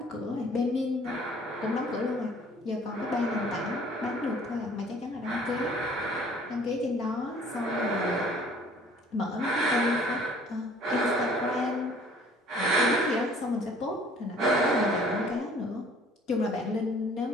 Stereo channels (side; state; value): both; normal; correlation 0.54